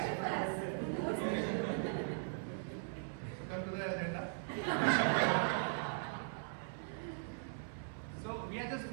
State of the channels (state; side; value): silent; left; 51 dB below the other